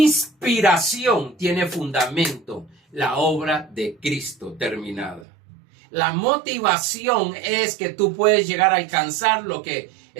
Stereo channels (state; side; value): drops out; left; at 5.2 s